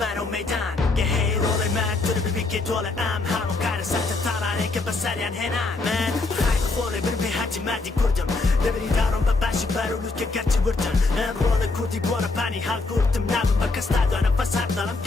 میدان یه هی رول مرد تو رو ببی که دول همون کار سخت تارانه که بسریان هنان من خیلی خوله برم به حجی مردی کردم نبری دارم بباشی برولوز که گرچه وردن من رول کردی بورا پانی حال کردم نبم بکس دادانه بس هر دارم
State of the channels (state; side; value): quieter; right; 3.5 dB